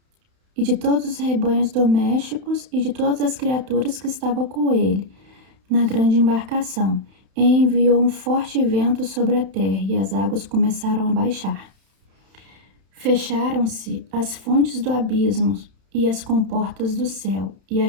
e de todos os rebanhos domésticos e de todas as criaturas que estavam com ele na grande embarcação. E enviou um forte vento sobre a terra e as águas começaram a baixar. Fecharam-se as fontes do abismo e as comportas do céu, e a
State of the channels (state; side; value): late; left; 31 ms